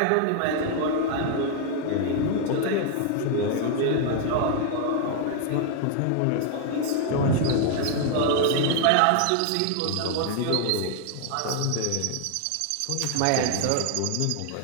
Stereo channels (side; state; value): both; different; correlation 0.00